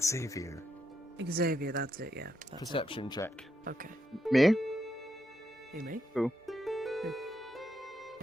Xavier. Xavier, that's it, yeah. That's Perception check. it. Okay. Me? Who, me? Who?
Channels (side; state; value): both; normal; correlation 0.81